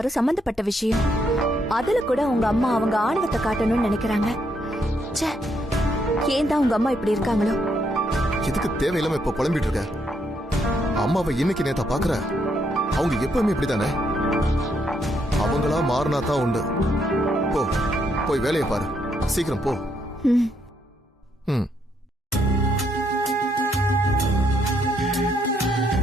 சம்பந்தப்பட்ட விஷயம். அதுல கூட உங்க அம்மா அவங்க ஆணவத்தை காட்டணும்னு நினைக்கிறாங்க. ச்சே, ஏன் தான் உங்க அம்மா இப்படி இருக்காங்களோ? எதுக்கு தேவையில்லாம இப்ப புலம்பிட்டு இருக்க? அம்மாவை இன்னைக்கு நேத்தா பாக்குற? அவங்க எப்பவுமே இப்படித்தானே. அவங்களா மாறினா தான் உண்டு. போ, போய் வேலையை பாரு. சீக்கிரம் போ. ம்.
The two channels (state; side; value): normal; both; correlation 0.75